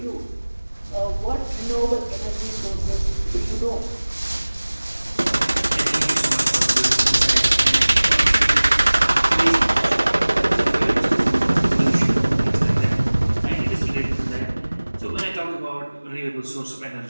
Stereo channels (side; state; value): both; inverted; correlation -1.00